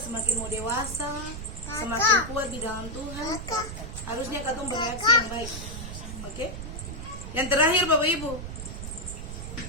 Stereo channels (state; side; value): noise; right; rumble, 8 dB below the sound